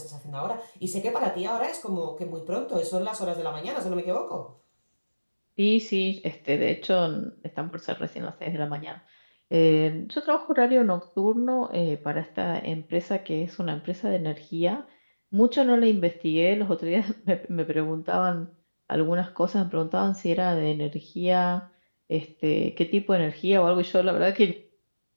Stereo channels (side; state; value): both; inverted; correlation -1.00